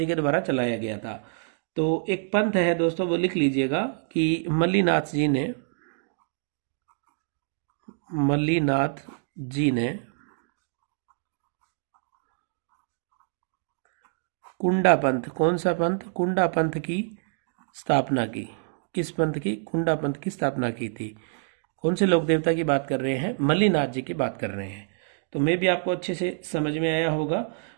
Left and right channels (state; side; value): silent; left; digital silence